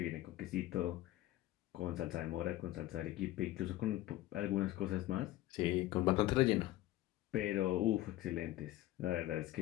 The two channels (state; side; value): quieter; right; 15.8 dB